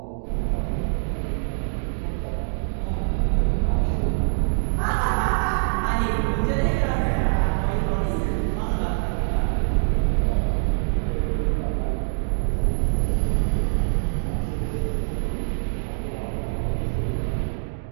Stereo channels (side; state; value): left; silent; digital silence